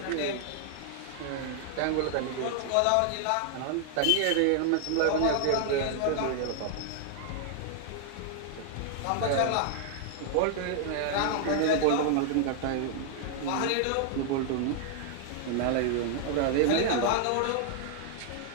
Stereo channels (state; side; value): different; both; correlation 0.00